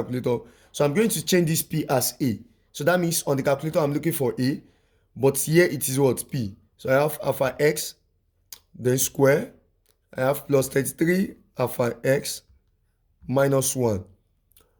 So I'm going to change this p as a. So that means on the calculator I'm looking for a, but here it is what? P. So I have alpha x, then square. I have plus 33 alpha x minus 1.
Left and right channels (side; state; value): both; identical; correlation 1.00